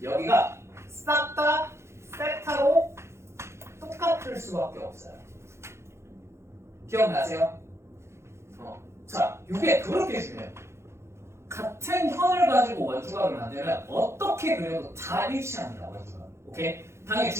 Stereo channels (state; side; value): late; left; 0.13 ms